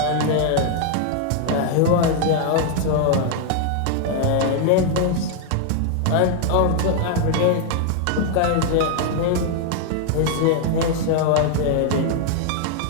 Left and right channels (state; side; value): different; both; correlation 0.00